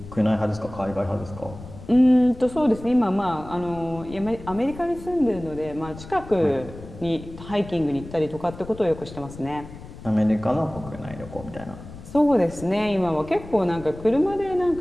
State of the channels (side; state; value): left; noise; rumble, 15 dB below the sound